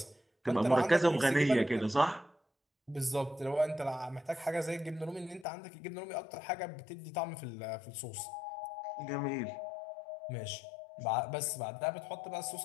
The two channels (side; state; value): right; drops out; at 5.5 s